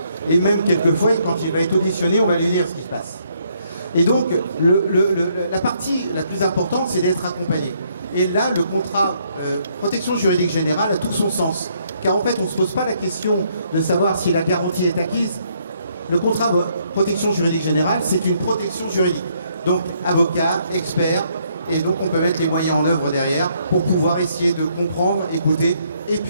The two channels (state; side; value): inverted; both; correlation -0.70